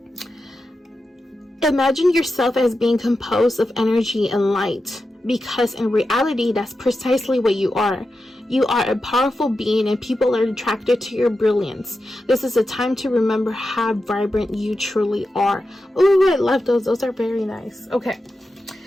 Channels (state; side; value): normal; both; correlation 0.90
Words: Imagine yourself as being composed of energy and light, because in reality, that's precisely what you are. You are a powerful being and people are attracted to your brilliance. This is a time to remember how vibrant you truly are. Oh, I love those. Those are very nice. Okay.